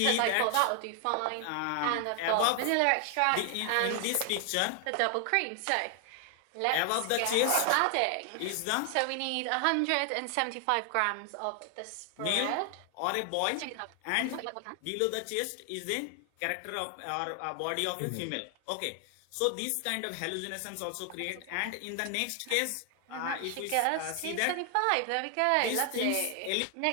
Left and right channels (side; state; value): both; different; correlation 0.00